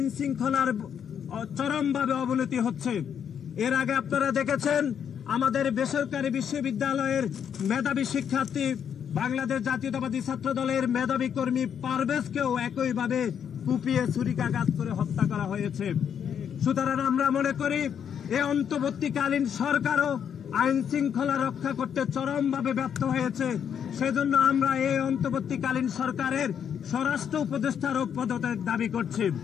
শৃঙ্খলার চরমভাবে অবনতি হচ্ছে। এর আগে আপনারা দেখেছেন আমাদের বেসরকারি বিশ্ববিদ্যালয়ের মেধাবী শিক্ষার্থী বাংলাদেশ জাতীয়তাবাদী ছাত্র দলের মেধাবী কর্মী পারভেজকেও একইভাবে কুপিয়ে ছুরিকাঘাত করে হত্যা করা হয়েছে। সুতরাং আমরা মনে করি এই অন্তর্বর্তীকালীন সরকারও আইন শৃঙ্খলা রক্ষা করতে চরমভাবে ব্যর্থ হয়েছে। সেজন্য আমরা এই অন্তর্বর্তীকালীন সরকারের স্বরাষ্ট্র উপদেষ্টারও পদত্যাগ দাবি করছি।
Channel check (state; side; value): quieter; right; 8.2 dB